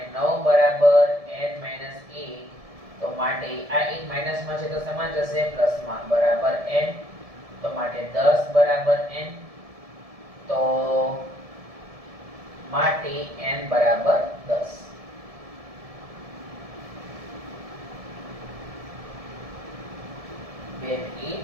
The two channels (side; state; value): left; late; 1.7 ms